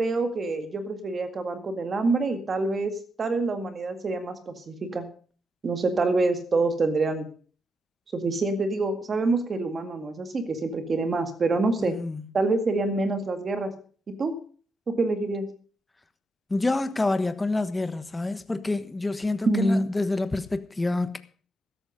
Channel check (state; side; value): normal; both; correlation 0.83